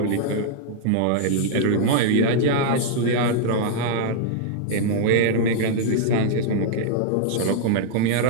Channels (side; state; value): both; different; correlation -0.01